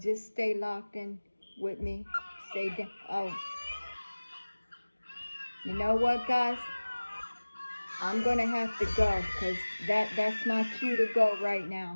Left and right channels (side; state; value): both; inverted; correlation -1.00